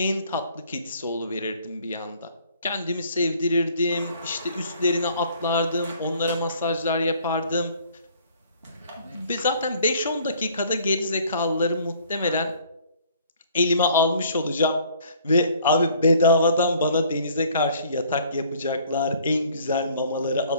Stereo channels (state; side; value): inverted; both; correlation -0.57